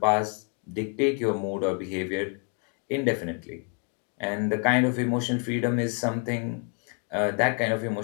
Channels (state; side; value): quieter; right; 39.1 dB